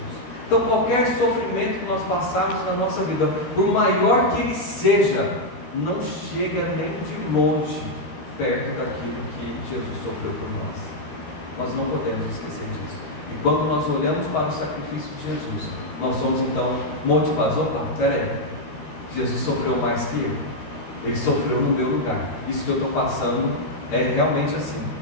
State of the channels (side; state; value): right; late; 12 ms